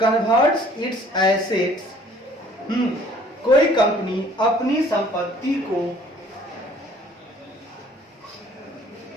its assets, कोई कंपनी अपनी संपत्ति को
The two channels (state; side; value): normal; both; correlation 0.56